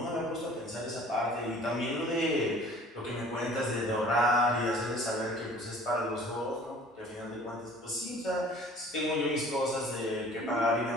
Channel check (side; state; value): both; normal; correlation 0.50